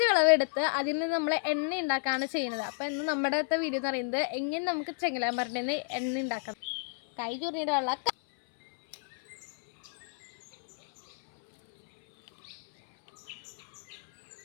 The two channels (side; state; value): right; silent; 57 dB below the other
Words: വിളവെടുത്ത് അതിൽ നിന്ന് നമ്മൾ എണ്ണ ഉണ്ടാക്കുകയാണ് ചെയ്യുന്നത്. അപ്പോൾ ഇന്ന് നമ്മുടെ വീഡിയോ എന്ന് പറയുന്നത് എങ്ങനെ നമുക്ക് ചെങ്ങലാമരൻ്റെ നിന്ന് എണ്ണ ഉണ്ടാക്കാം. കൈ ചുരുങ്ങിയിട്ടുള്ള